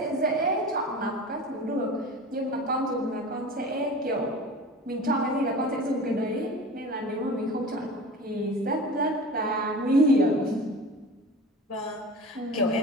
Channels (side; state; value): both; normal; correlation 0.35